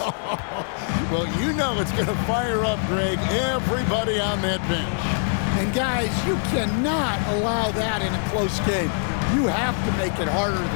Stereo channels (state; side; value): silent; right; 63 dB below the other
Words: Well, you know it's going to fire up, Greg, everybody on that bench. And guys, you cannot allow that in a close game. You have to make it harder